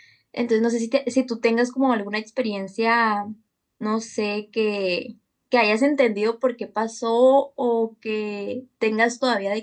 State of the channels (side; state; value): both; identical; correlation 1.00